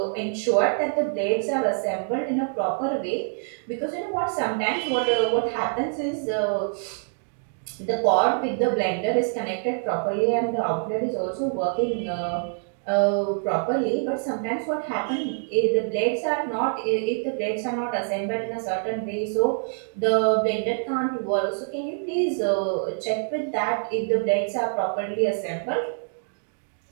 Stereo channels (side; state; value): left; silent; 61 dB below the other